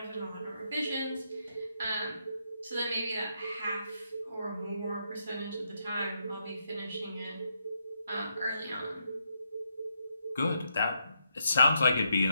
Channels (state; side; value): inverted; both; correlation -0.79